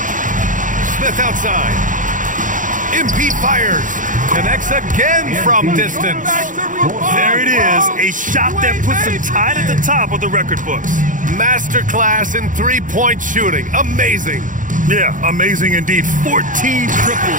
Smith outside. MP fires. Connects again from distance. There it is. A shot that puts him tied at the top of the record books. Masterclass in three-point shooting. Amazing. Yeah, amazing indeed. 14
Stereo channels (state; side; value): late; left; 0.38 ms